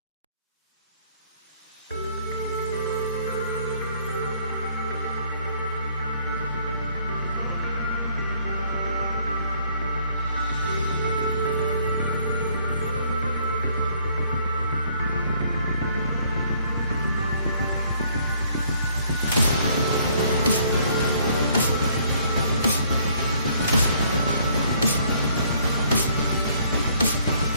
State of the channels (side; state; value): both; inverted; correlation -0.63